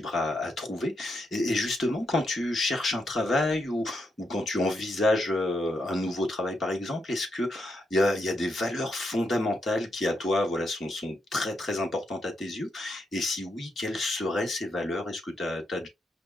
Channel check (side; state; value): both; normal; correlation 0.81